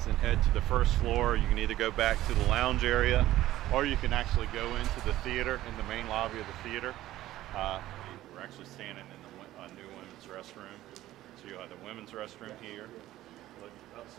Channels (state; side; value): quieter; left; 14.9 dB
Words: and head to the first floor. You can either go back to the lounge area, or you can actually go into the theater, in the main lobby of the theater. We're actually standing in the new women's restroom. So you'll have the women's restroom here. Look,